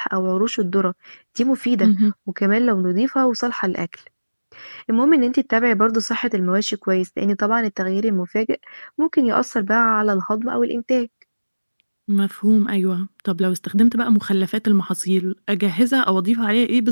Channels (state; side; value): inverted; both; correlation -1.00